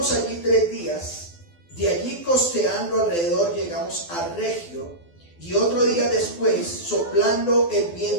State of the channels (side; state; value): right; late; 12 ms